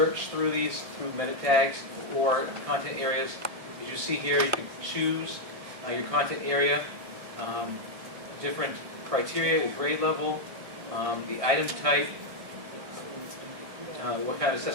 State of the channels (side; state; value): left; late; 1.6 ms